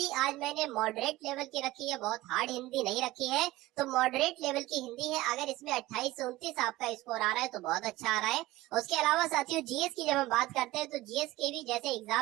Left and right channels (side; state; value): left; quieter; 17.6 dB